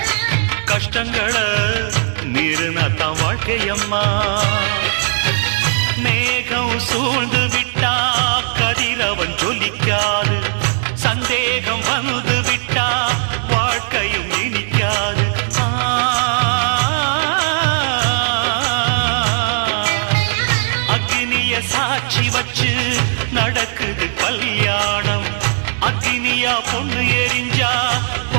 கஷ்டங்களை மீறினாத்தான் வாழ்க்கையம்மா. மேகம் சூழ்ந்து விட்டா கதிரவன் ஜொலிக்காது, சந்தேகம் வந்து விட்டா வாழ்க்கையும் இனிக்காது. அக்னிய சாட்சி வச்சு நடக்குது கல்யாணம், அக்னியா பொண்ணு எரிஞ்சா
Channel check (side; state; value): left; silent; 63 dB below the other